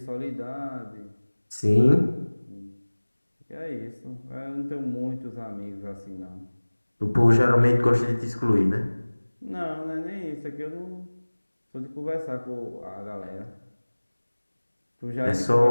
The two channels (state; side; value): inverted; both; correlation -1.00